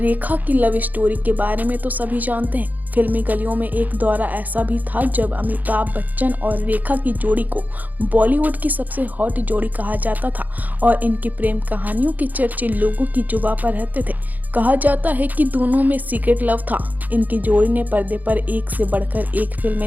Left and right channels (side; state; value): left; late; 0.082 ms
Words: की लव स्टोरी के बारे में तो सभी जानते हैं। फिल्मी गलियों में एक दौरा ऐसा भी था जब अमिताभ बच्चन और रेखा की जोड़ी को बॉलीवुड की सबसे हॉट जोड़ी कहा जाता था और इनकी प्रेम कहानियों के चर्चे लोगों की जुबां पर रहते थे। कहा जाता है कि दोनों में सीक्रेट लव था। इनकी जोड़ी ने पर्दे पर एक से बढ़कर एक